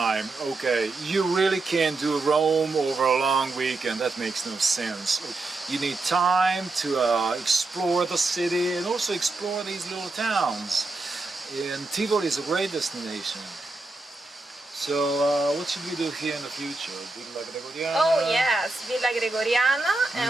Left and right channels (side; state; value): left; quieter; 3.3 dB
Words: Okay, you really can't do Rome over a long weekend. That makes no sense. You need time to explore the city and also explore these little towns. And Tivoli is a great destination. So, what should we do here in the future? Villa Gregoriana? Oh yes, Villa Gregoriana,